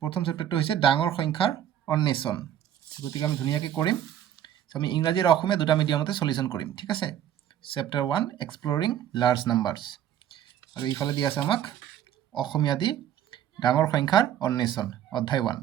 প্ৰথম চেপ্টাৰটো হৈছে ডাঙৰ সংখ্যাৰ অন্বেষণ। গতিকে আমি ধুনীয়াকৈ কৰিম। আমি ইংৰাজী আৰু অসমীয়া দুটা মিডিয়ামতে সলিউশ্যন কৰিম, ঠিক আছে। চেপ্টাৰ 1 এক্সপ্লৰিং লাৰ্জ নাম্বাৰ্ছ, আৰু ইফালে দি আছে আমাক অসমীয়া দি ডাঙৰ সংখ্যাৰ অন্বেষণ অধ্যায় 1।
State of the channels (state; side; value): quieter; left; 10.7 dB